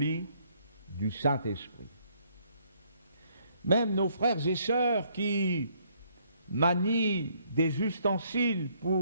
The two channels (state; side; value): inverted; both; correlation -0.67